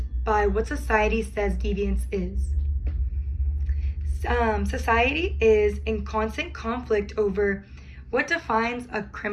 by what society says deviance is. Society is in constant conflict over what defines a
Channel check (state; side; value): identical; both; correlation 1.00